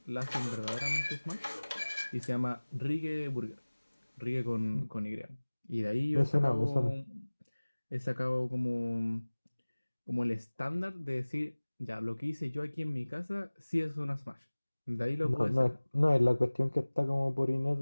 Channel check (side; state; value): both; inverted; correlation -1.00